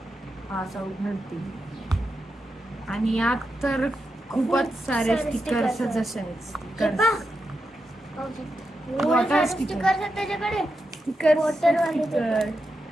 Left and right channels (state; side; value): normal; both; correlation 0.87